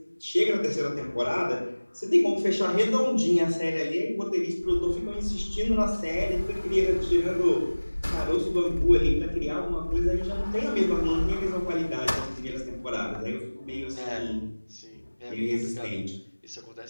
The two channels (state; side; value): inverted; both; correlation -1.00